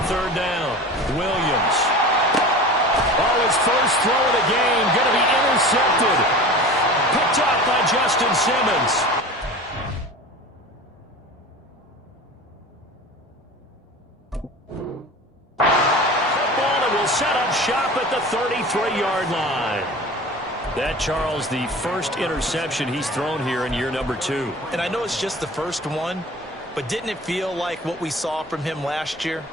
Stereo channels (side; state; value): both; normal; correlation 0.36